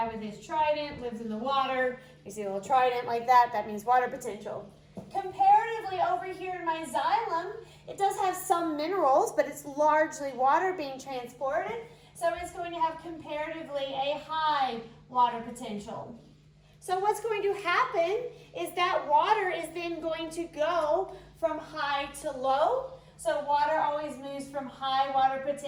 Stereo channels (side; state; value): both; identical; correlation 1.00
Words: with his trident lives in the water. You see a little trident like that, that means water potential. Comparatively over here in my xylem, it does have some minerals, but it's largely water being transported. So it's going to have comparatively a high water potential. So what's going to happen is that water is then going to go from high to low. So water always moves from high water